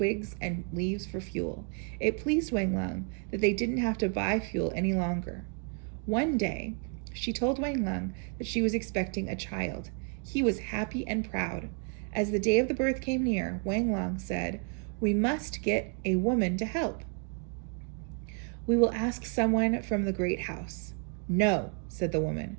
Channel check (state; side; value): quieter; left; 38.6 dB